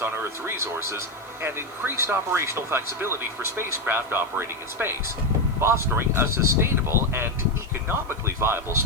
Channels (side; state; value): left; noise; hiss, 28 dB below the sound